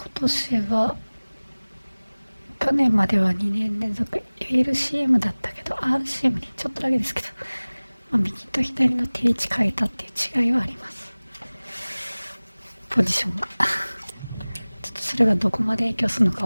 年は去年までは2年連続 LCM だったけど RCM にちょっとだけですけど、右と左の定位置変えたっていう違いはあります。ポジションがちょっとそれがどこまで影響するのか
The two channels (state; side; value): inverted; both; correlation -1.00